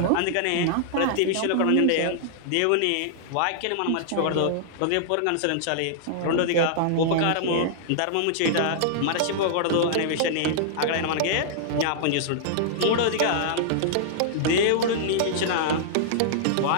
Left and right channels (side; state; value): both; different; correlation -0.01